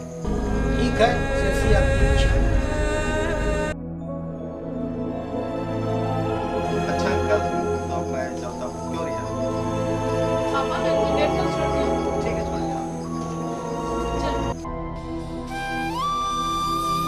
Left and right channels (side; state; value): both; identical; correlation 1.00